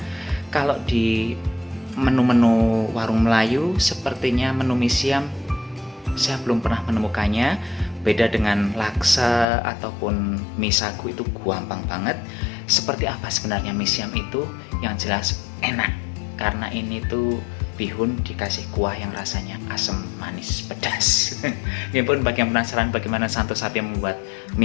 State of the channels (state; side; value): drops out; right; at 9.5 s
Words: kalau di menu-menu warung Melayu sepertinya menu mie siam saya belum pernah menemukannya. Beda dengan laksa ataupun mie sagu, itu gampang banget. Seperti apa sebenarnya mie siam itu? Yang jelas enak, karena ini tuh bihun dikasih kuah yang rasanya asam, manis, pedas. Ya pun, bagi yang penasaran bagaimana Santo Sapi membuat